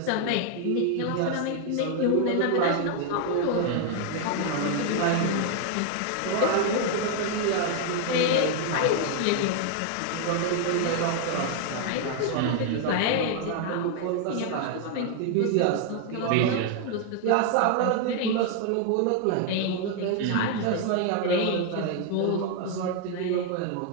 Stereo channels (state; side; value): different; both; correlation 0.00